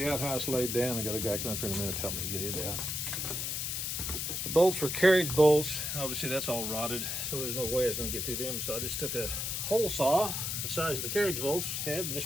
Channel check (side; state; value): left; noise; hiss, 2 dB below the sound